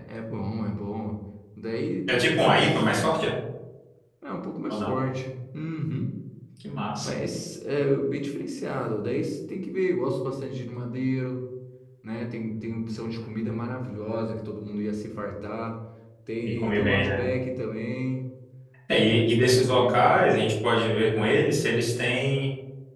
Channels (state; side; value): identical; both; correlation 1.00